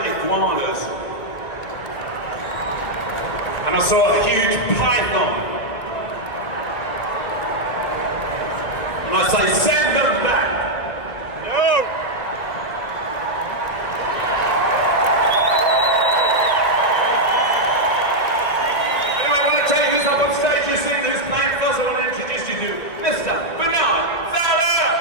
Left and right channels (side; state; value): right; late; 2.1 ms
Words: iguanas. And I saw a huge python. And I say, send them back. No! Anyway, I want to tell you who's up on stage. You've seen who's playing first. I want to introduce you to Mr. Bernard Fowler.